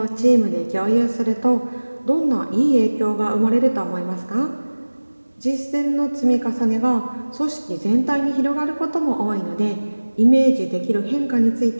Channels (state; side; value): inverted; both; correlation -1.00